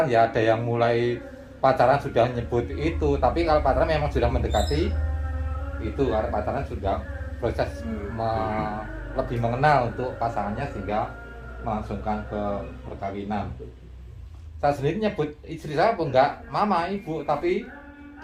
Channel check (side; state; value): both; identical; correlation 1.00